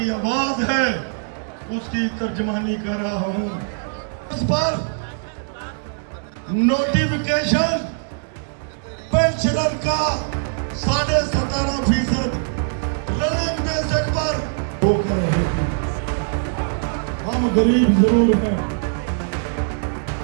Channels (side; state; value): left; silent; 64 dB below the other